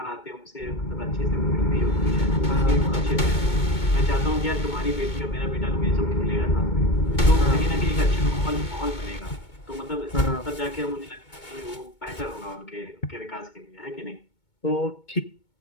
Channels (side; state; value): right; late; 2.2 ms